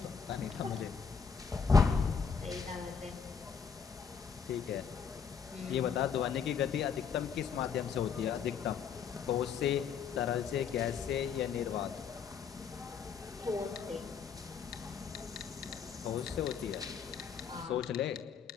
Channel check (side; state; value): right; quieter; 6.5 dB